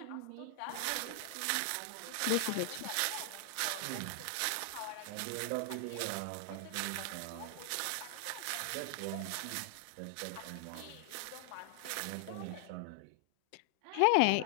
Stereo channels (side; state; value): both; different; correlation 0.00